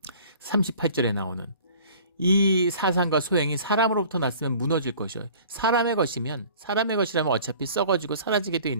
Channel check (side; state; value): both; inverted; correlation -0.48